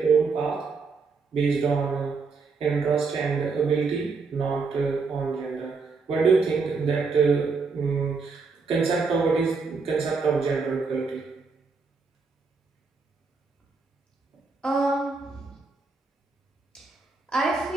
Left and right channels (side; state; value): left; quieter; 4.5 dB